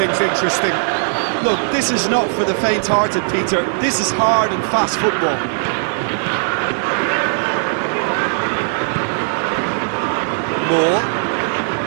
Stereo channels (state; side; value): silent; left; digital silence